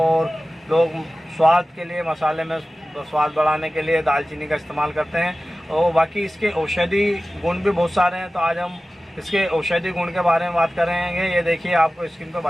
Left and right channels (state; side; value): normal; both; correlation 0.96